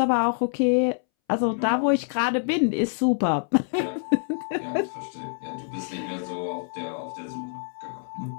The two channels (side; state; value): right; silent; 61 dB below the other